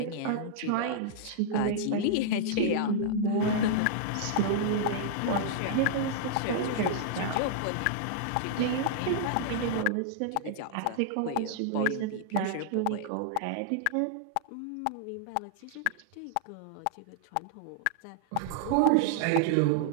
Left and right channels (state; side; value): different; both; correlation -0.01